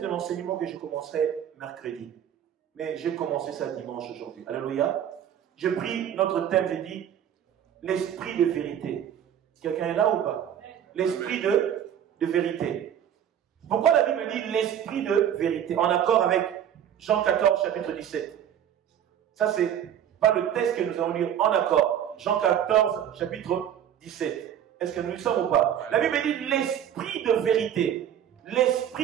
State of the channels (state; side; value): quieter; left; 9.8 dB